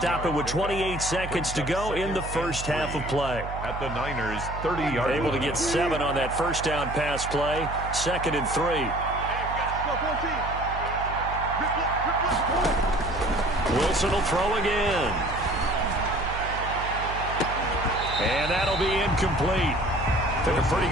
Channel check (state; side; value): noise; right; hum, 8 dB below the sound